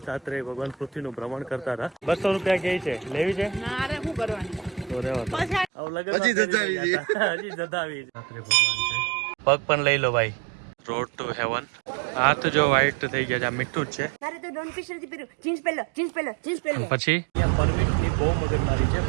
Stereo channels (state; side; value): drops out; left; at 5.7 s